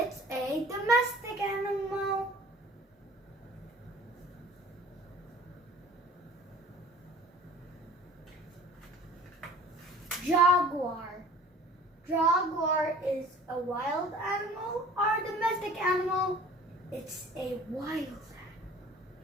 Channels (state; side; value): normal; both; correlation 0.48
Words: a domestic animal. Jaguar. Jaguar is a wild animal or a domestic animal? It's a wild animal.